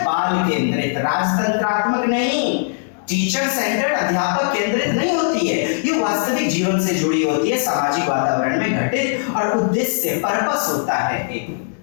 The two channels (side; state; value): right; silent; 66 dB below the other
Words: बाल केंद्रित, राजतंत्रात्मक नहीं, टीचर सेंटर्ड, अध्यापक केंद्रित नहीं होती है। ये वास्तविक जीवन से जुड़ी होती है, सामाजिक वातावरण में घटित और उद्देश्य, पर्पस होता है एक।